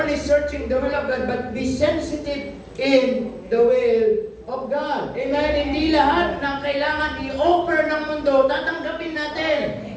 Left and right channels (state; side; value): identical; both; correlation 1.00